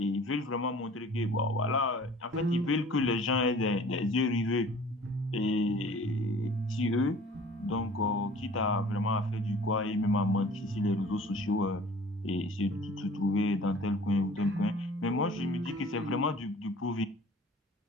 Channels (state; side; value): normal; both; correlation 0.47